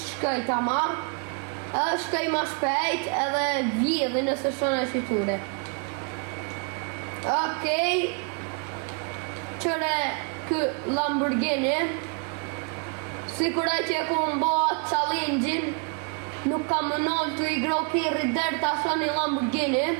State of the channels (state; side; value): quieter; left; 38.6 dB